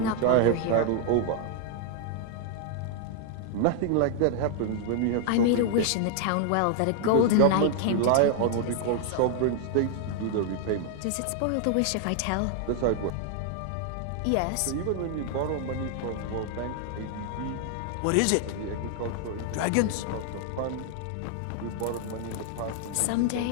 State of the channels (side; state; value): both; different; correlation 0.00